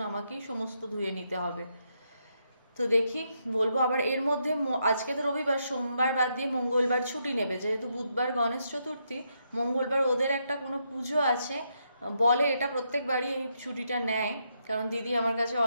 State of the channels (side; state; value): both; inverted; correlation -0.79